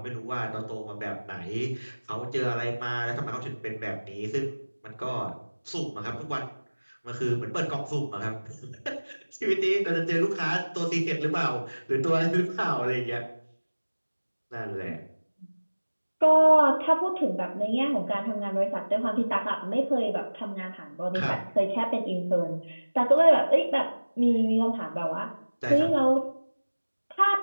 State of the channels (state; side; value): inverted; both; correlation -1.00